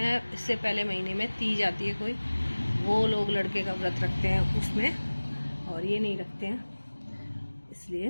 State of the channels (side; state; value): both; inverted; correlation -1.00